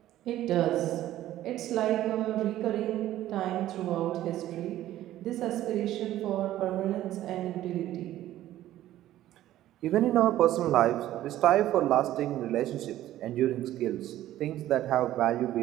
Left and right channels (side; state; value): left; quieter; 13.7 dB